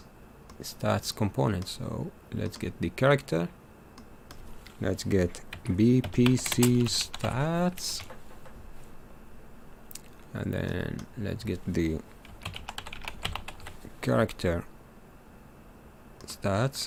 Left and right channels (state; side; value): identical; both; correlation 1.00